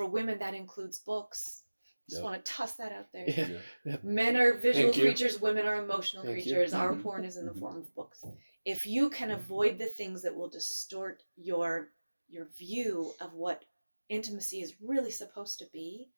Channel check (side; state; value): both; inverted; correlation -1.00